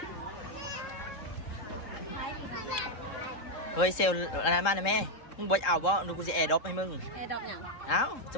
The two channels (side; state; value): right; late; 3.7 ms